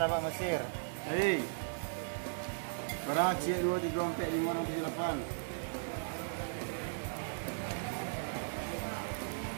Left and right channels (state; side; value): silent; left; 53 dB below the other